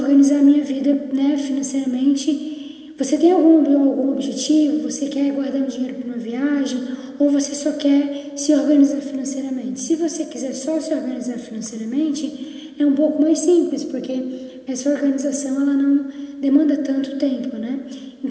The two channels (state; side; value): identical; both; correlation 1.00